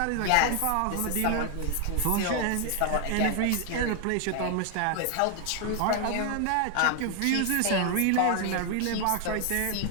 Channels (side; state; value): both; different; correlation 0.00